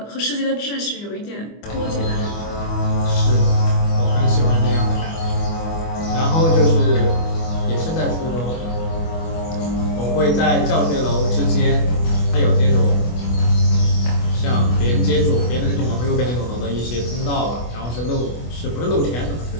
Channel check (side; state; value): right; late; 25 ms